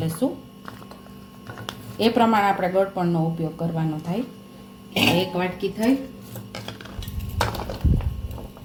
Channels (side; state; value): both; identical; correlation 1.00